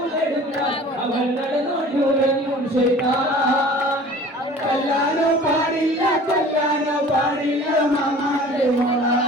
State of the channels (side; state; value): both; normal; correlation 0.45